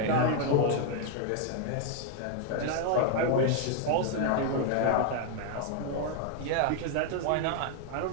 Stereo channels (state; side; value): different; both; correlation 0.00